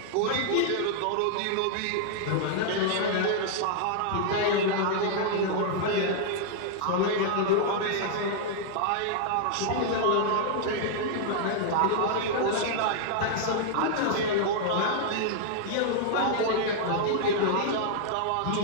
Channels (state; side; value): different; both; correlation -0.01